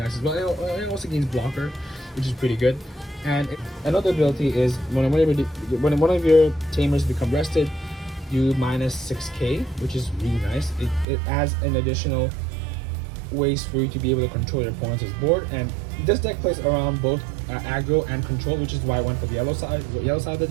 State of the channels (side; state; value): left; drops out; at 11.1 s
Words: as well. It also gains blocker, which is pretty good. And another ability is when one of your tamers become rested, you minus 6k, which is really nice. It adds an additional ways for you to be able to control your opponent's board, and this deck plays around both aggro and control, which is why I went for the yellow side of the